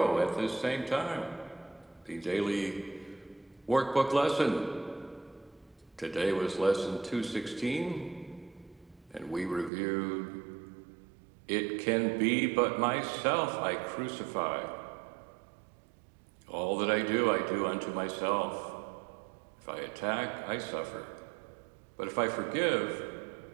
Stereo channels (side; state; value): left; drops out; at 9.7 s